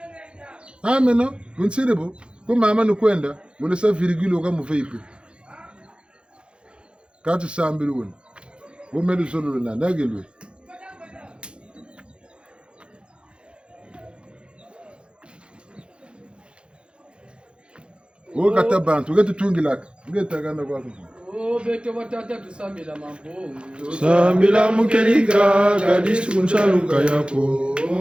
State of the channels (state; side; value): late; left; 0.056 ms